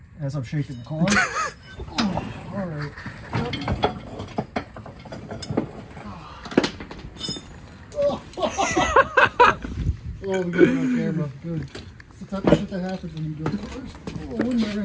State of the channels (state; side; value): identical; both; correlation 1.00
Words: as I'm shaking the car. All right. Oh, we got it on camera. Good. It's the type of shit that happens when you build cars. Oh, where'd my